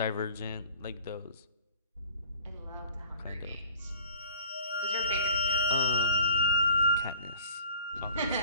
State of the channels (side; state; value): both; inverted; correlation -0.49